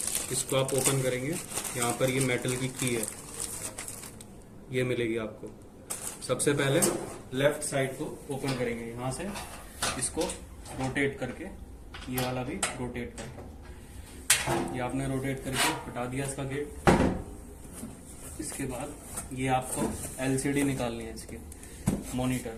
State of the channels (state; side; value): identical; both; correlation 1.00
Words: इसको आप ओपन करेंगे, यहाँ पर ये मेटल की की है, ये मिलेगी आपको। सबसे पहले लेफ्ट साइड को ओपन करेंगे, यहाँ से इसको रोटेट करके, ये वाला भी रोटेट करके, ये आपने रोटेट करके हटा दिया इसका गेट। इसके बाद ये आपको एलसीडी निकालनी है इसकी, मॉनिटर।